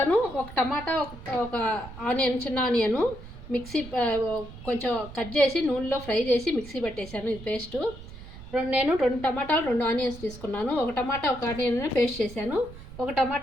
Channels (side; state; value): right; noise; rumble, 15 dB below the sound